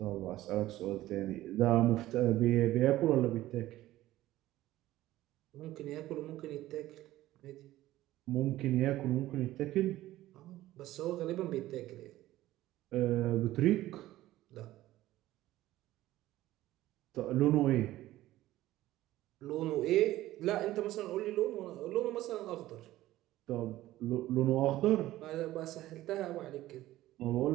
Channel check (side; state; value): left; quieter; 15.5 dB